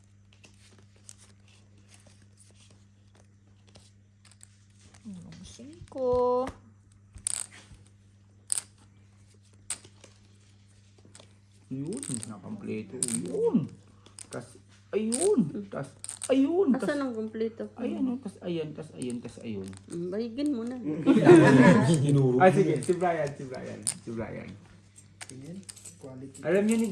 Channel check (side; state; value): both; identical; correlation 1.00